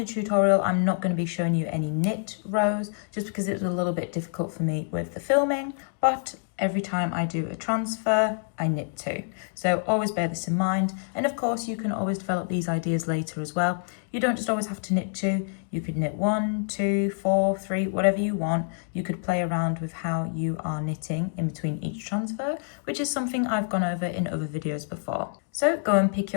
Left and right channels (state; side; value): silent; right; digital silence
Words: tutorial, I'm not going to be showing you any knit rows just because it was a little bit difficult for me with the filming, but every time I do a transfer, I knit 2. So always bear this in mind. And of course, you can always develop these ideas later as well. You don't just always have to knit 2. You could knit 1, 2, 4, 3, whatever you want. You could play around with how you are knitting in between each transfer, which is something I've gone over in other videos before. So go and pick